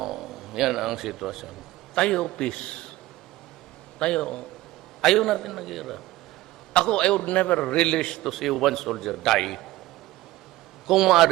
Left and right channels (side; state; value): left; quieter; 17.1 dB